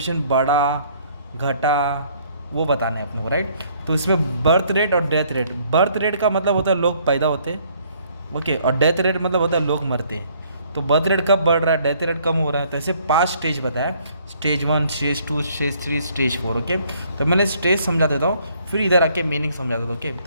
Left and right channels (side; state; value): both; inverted; correlation -0.63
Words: बढ़ा घटा, वो बताना है अपने को, राइट? तो इसमें बर्थ रेट और डेथ रेट। बर्थ रेट का मतलब होता है लोग पैदा होते हैं, ओके, और डेथ रेट मतलब होता है लोग मरते हैं। तो बर्थ रेट कब बढ़ रहा है, डेथ रेट कम हो रहा है। तो ऐसे 5 स्टेज बताया, stage 1, stage 2, stage 3, stage 4, okay. तो मैंने स्टेज समझा देता हूँ, फिर इधर आके मीनिंग समझा देता हूँ, ओके।